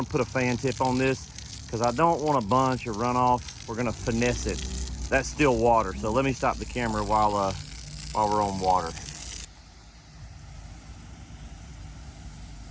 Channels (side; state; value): both; identical; correlation 1.00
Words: put a fan tip on this because I don't want a bunch of runoff. We're gonna finesse it. That's still water, so let me stop the camera while we're on water.